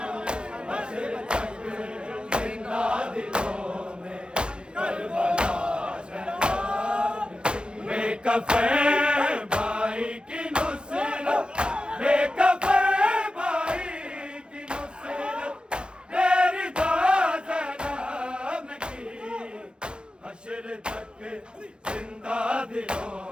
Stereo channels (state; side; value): late; left; 0.051 ms